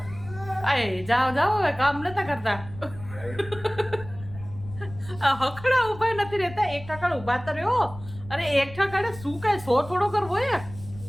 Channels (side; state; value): left; noise; rumble, 16 dB below the sound